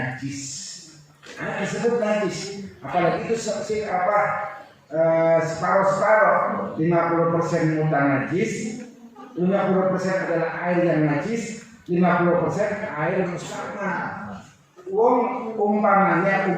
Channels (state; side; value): identical; both; correlation 1.00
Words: Air tersebut najis, apalagi itu separuh-separuh, 50% mutlak najis, 50% adalah air yang najis, 50% air mustakmal. Umpama